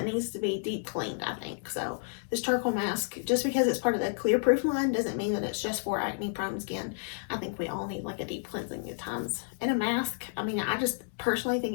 needs to be deep cleaned, I think. So this charcoal mask, just because it's part of the Clearproof line, doesn't mean that it's just for acne prone skin. I think we all need like a deep cleansing at times. And a mask, I mean, I just personally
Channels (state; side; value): silent; right; 57 dB below the other